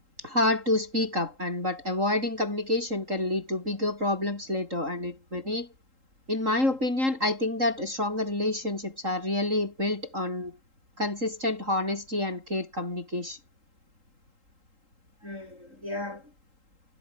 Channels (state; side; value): late; left; 3.8 ms